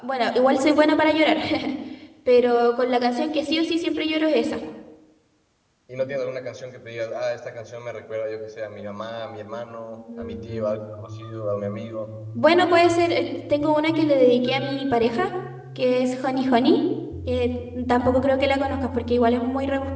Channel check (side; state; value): both; identical; correlation 1.00